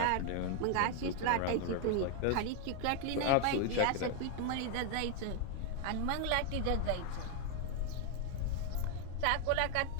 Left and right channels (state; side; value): different; both; correlation 0.00